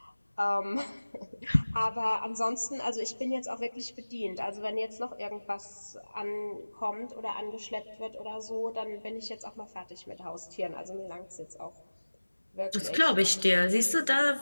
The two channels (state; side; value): inverted; both; correlation -1.00